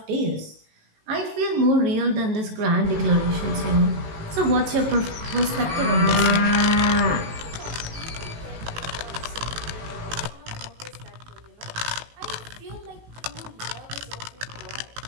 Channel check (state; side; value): late; left; 18 ms